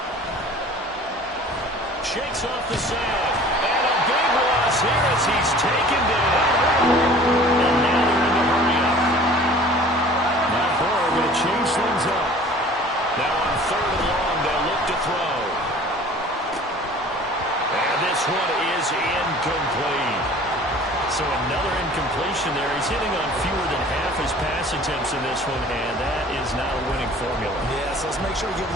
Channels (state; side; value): normal; both; correlation 0.47